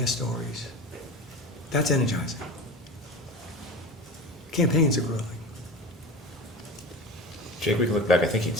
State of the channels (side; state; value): both; normal; correlation 0.31